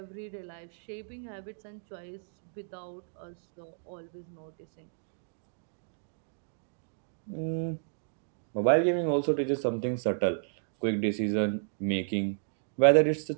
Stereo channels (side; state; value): left; silent; digital silence